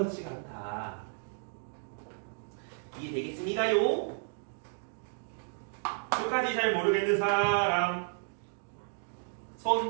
않다. 이해되겠습니까요? 끝까지 잘 모르겠는 사람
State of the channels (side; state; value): left; silent; digital silence